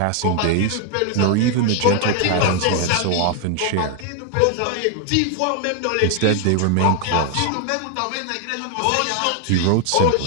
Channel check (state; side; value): different; both; correlation 0.00